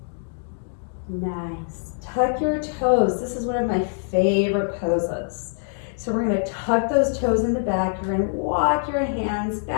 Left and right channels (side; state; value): right; silent; digital silence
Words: Nice. Tuck your toes. This is one of my favorite poses. So we're going to tuck those toes in the back. You're going to walk your hands